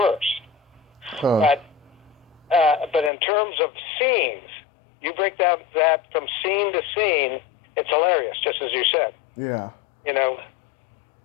Huh. But in terms of scenes, you break down that from scene to scene, it's hilarious, just as you said. Yeah. You know.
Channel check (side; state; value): right; drops out; at 3.1 s